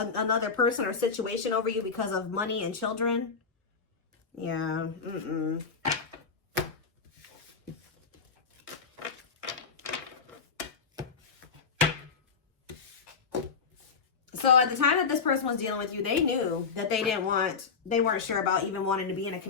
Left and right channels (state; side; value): quieter; right; 5.5 dB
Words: person or situation over you because of money and children. Yeah. So at the time that this person was dealing with you, they knew that they weren't sure about even wanting to be in a